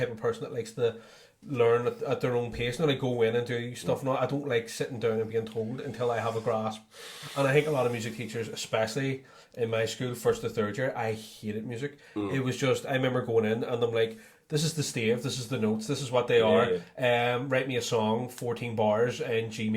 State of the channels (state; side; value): identical; both; correlation 1.00